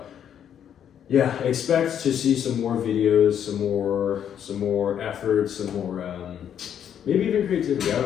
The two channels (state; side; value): quieter; right; 9.2 dB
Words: yeah, expect to see some more videos, some more efforts, some more maybe even creativity. I